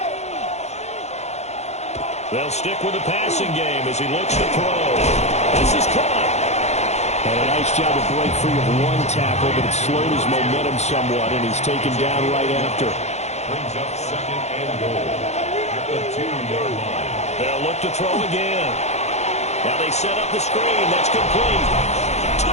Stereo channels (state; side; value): late; right; 0.32 ms